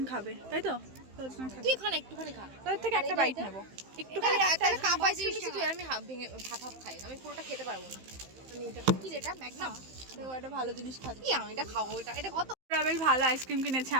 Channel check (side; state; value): left; late; 15 ms